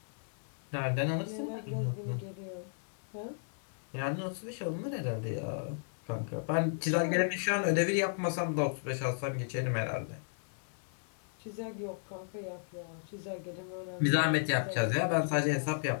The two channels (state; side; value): silent; right; 55 dB below the other